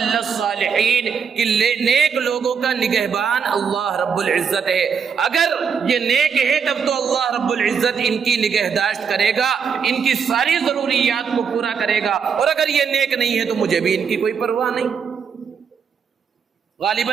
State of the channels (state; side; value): quieter; left; 6.5 dB